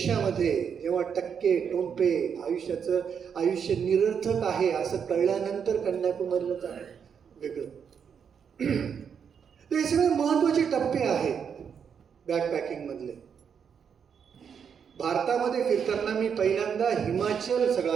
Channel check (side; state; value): left; quieter; 7.2 dB